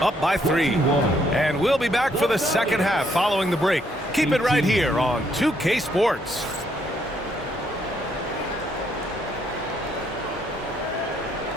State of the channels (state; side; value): normal; both; correlation 0.71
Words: up by 3. And we'll be back for the second half following the break. Keep it right here on 2K Sports.